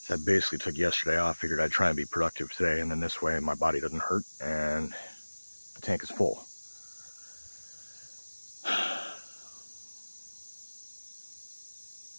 So I basically took yesterday off, figured I'd try and be productive today, and then this way my body doesn't hurt and the tank is full.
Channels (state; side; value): inverted; both; correlation -1.00